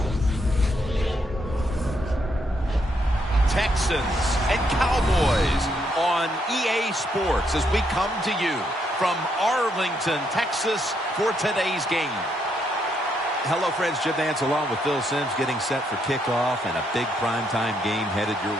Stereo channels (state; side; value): normal; both; correlation 0.76